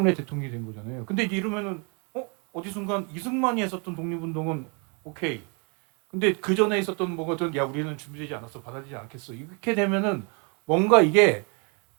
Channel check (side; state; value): left; quieter; 34.6 dB